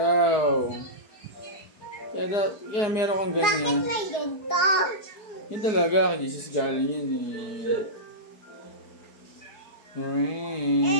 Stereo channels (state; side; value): late; right; 4.8 ms